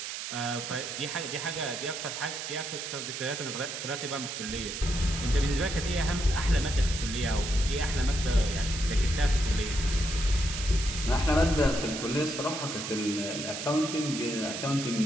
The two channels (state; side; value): noise; right; hiss, 6 dB below the sound